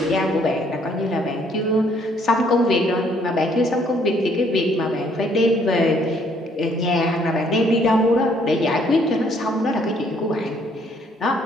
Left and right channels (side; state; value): both; normal; correlation 0.65